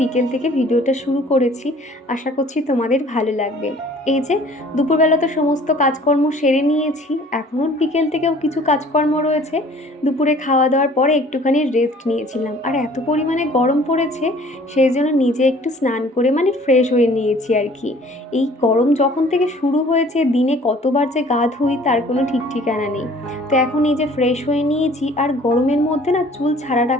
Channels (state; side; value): normal; both; correlation 0.52